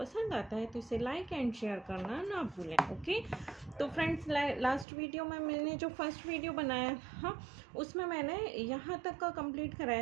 आता है तो इसे लाइक एंड शेयर करना ना भूलें। ओके, तो फ्रेंड्स, लास्ट वीडियो में मैंने जो फर्स्ट वीडियो बनाया था उसमें मैंने यहाँ तक का कंप्लीट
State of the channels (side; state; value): left; drops out; at 4.9 s